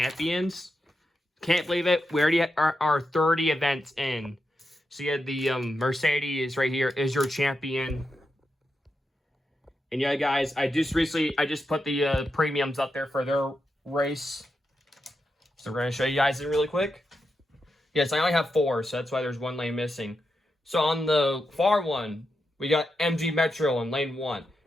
Can't believe it. We already are 30 events in. So yeah, the Mercedes right here is your champion. And yeah, guys, I just put the premiums up there for their race. So we're going to show you guys it really quick. Yes, I only have 4, so that's why there's 1 lane missing. So on the far one, we got MG Metro in lane 1.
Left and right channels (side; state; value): both; normal; correlation 0.86